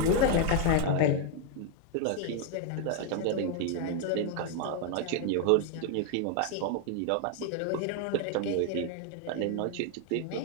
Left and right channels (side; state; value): both; different; correlation 0.00